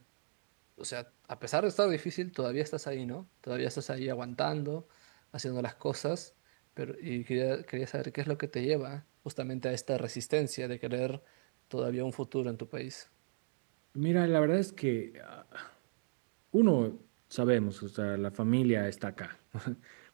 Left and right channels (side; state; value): left; silent; digital silence